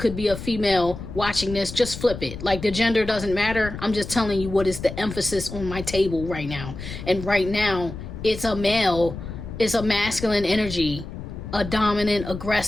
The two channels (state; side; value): noise; left; rumble, 10 dB below the sound